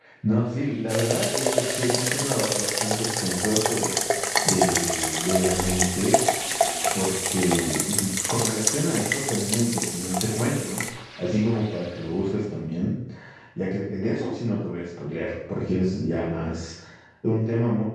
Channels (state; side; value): identical; both; correlation 1.00